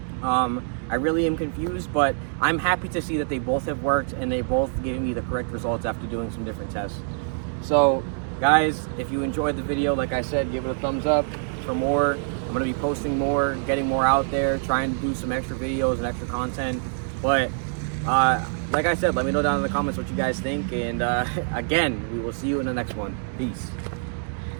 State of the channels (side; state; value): left; silent; digital silence